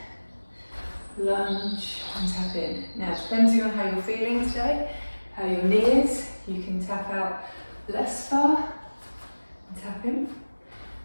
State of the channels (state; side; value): inverted; both; correlation -1.00